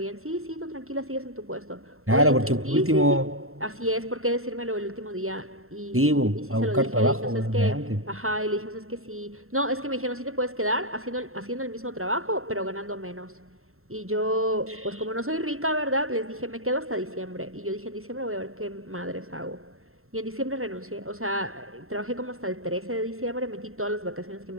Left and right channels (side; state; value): left; late; 0.62 ms